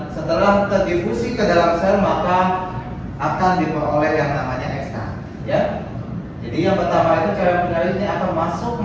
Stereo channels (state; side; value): identical; both; correlation 1.00